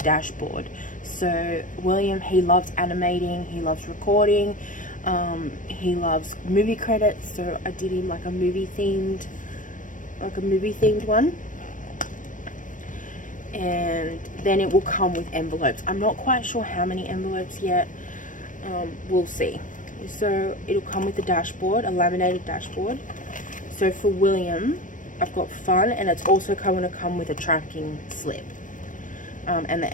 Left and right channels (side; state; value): right; late; 0.38 ms